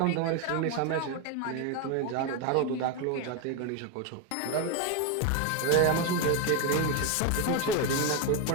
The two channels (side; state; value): both; different; correlation 0.02